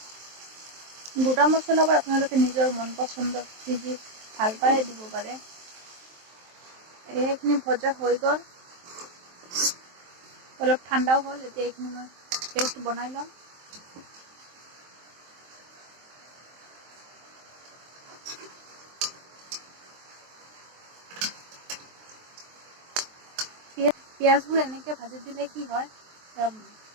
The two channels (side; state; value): left; late; 23 ms